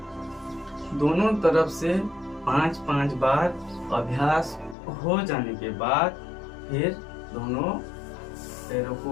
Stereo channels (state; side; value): drops out; right; at 4.8 s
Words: दोनों तरफ से 5-5 बार अभ्यास हो जाने के बाद फिर दोनों पैरों